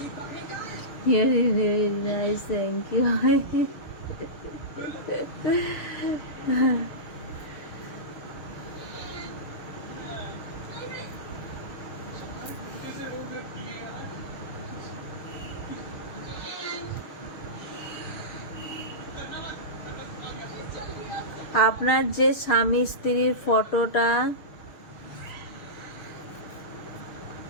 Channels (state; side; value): late; right; 6.6 ms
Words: Very very nice, thank you. আপনার যে স্বামী স্ত্রীর ফটোটা